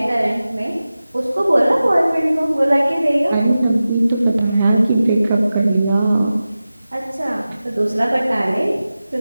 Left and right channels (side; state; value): both; inverted; correlation -0.95